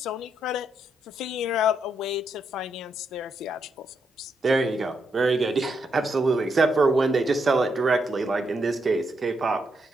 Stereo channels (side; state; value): both; normal; correlation 0.80